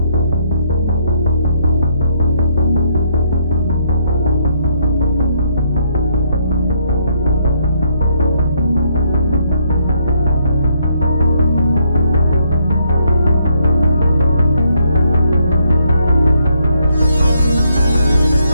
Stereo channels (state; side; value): inverted; both; correlation -0.71